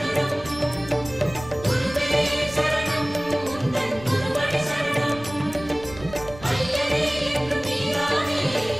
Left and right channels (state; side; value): noise; right; rumble, 16 dB below the sound